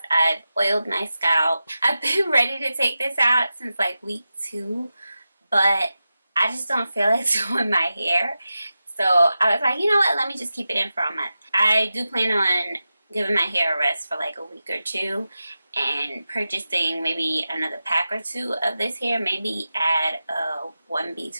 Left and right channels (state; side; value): inverted; both; correlation -0.92